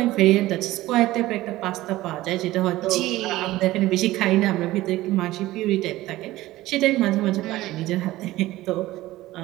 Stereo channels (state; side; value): quieter; left; 16.9 dB